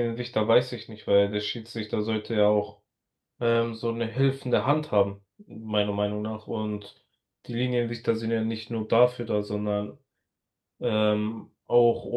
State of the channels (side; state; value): both; identical; correlation 1.00